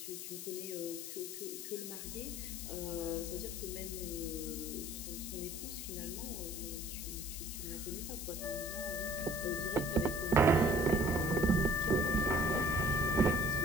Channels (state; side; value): noise; left; hiss, 8 dB below the sound